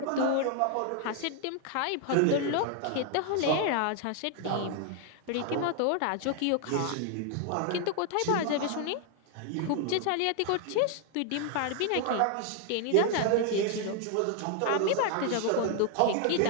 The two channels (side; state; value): both; different; correlation 0.00